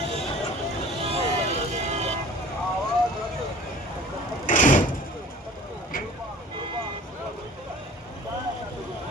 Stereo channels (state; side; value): normal; both; correlation 0.47